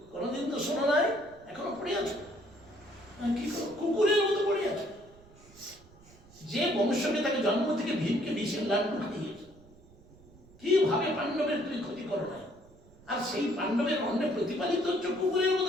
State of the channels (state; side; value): noise; right; rumble, 25 dB below the sound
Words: কোনোদিন তো শোনো নাই, এখনো পড়ে আছো কি কুকুরের মতো পড়ে আছো। যে বংশকে তাকে জন্ম থেকে ভীমকে বিষের লাড্ডু খাইয়েছে, কিভাবে পাণ্ডবের তুই ক্ষতি করো নাই, আর সেই পাণ্ডবের অন্যে প্রতিপালিত হচ্ছে কুকুরের